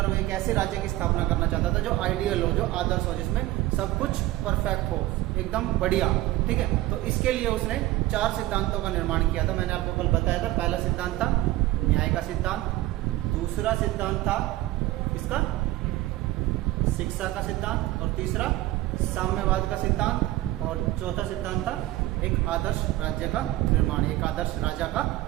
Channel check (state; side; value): quieter; left; 16.9 dB